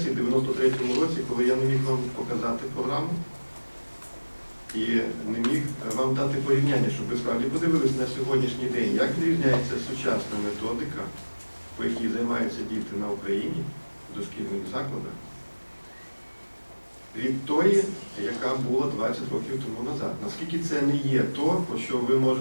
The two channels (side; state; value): both; inverted; correlation -1.00